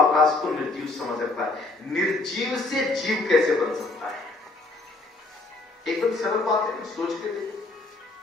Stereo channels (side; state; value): right; quieter; 3.2 dB